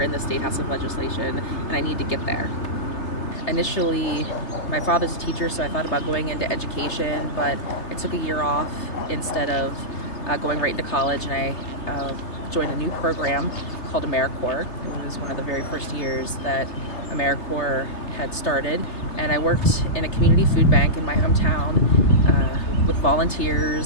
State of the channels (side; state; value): right; late; 3.3 ms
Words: in the State House of Legislation, and I need to get there. Initially, my father's a teacher, so I thought about going into education, but I took a year off instead of going right into college, and I joined a new program called AmeriCorps. It was one of the very first years that AmeriCorps had started, and I worked in a community food bank in my hometown with